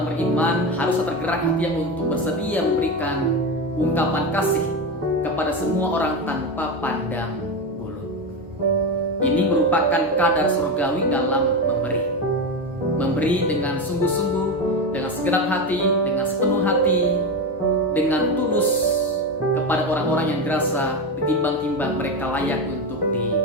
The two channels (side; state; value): both; normal; correlation 0.17